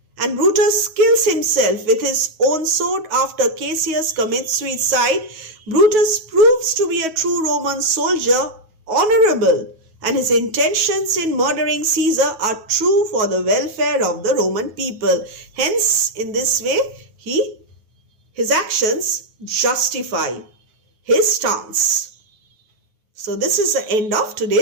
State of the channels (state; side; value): late; left; 9.3 ms